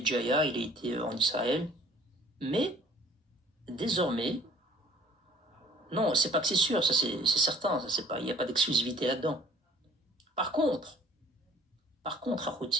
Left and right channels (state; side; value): normal; both; correlation 0.53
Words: il a été en Israël, mais désormais, non, c'est pas que c'est sûr, ça c'est certain, ça c'est pas, il n'y a pas d'exclusivité là-dedans. Par contre,